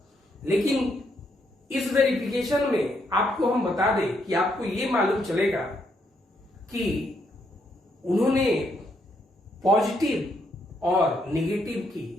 लेकिन इस वेरिफिकेशन में आपको हम बता दें कि आपको ये मालूम चलेगा कि उन्होंने पॉजिटिव और नेगेटिव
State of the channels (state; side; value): normal; both; correlation 0.75